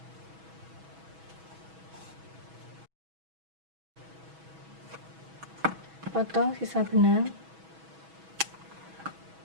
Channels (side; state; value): left; late; 6.2 ms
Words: Potong sisa benang,